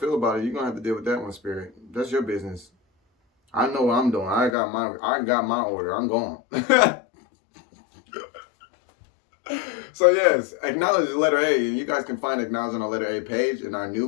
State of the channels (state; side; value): drops out; right; at 4.5 s